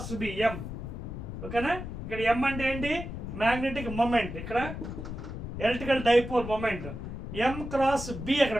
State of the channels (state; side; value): noise; left; rumble, 7 dB below the sound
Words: ఓకేనా, ఇక్కడ M అంటే ఏంటి? Magnetic moment. ఇక్కడ electrical dipole moment. M cross B అక్కడ